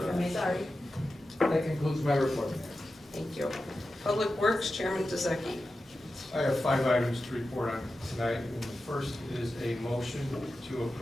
me. Sorry. That concludes my report, Mayor. Thank you. Public Works, Chairman Dezeki. I have 5 items to report on tonight, and the first is a motion to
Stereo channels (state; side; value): normal; both; correlation 0.92